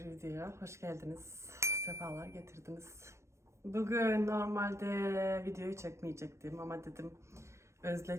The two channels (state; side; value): late; left; 0.13 ms